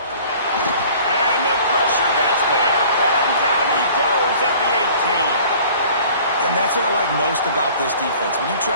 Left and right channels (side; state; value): both; inverted; correlation -0.49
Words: the pressure gets there. And down he goes at the 18. And that's what I like most about this defense. When you